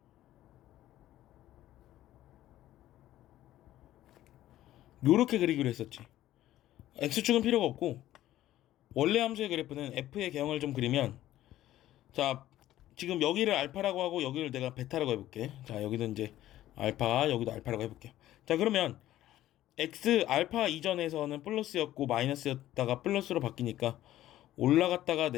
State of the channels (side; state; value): right; quieter; 13.9 dB